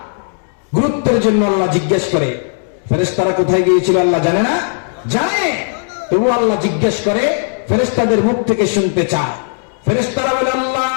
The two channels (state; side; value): silent; right; 69 dB below the other